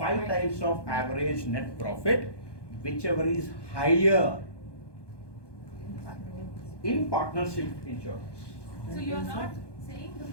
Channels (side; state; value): right; late; 1.2 ms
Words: 5 times of average net profit, whichever is higher in partnership insurance. So you are not saying the